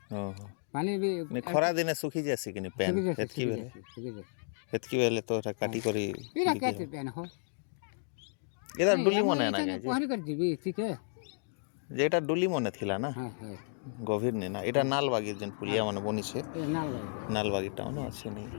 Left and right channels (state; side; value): silent; right; digital silence